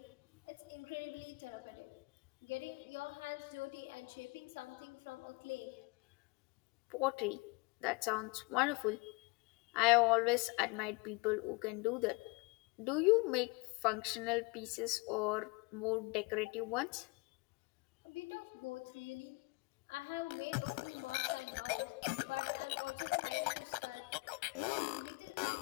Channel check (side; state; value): right; quieter; 27.7 dB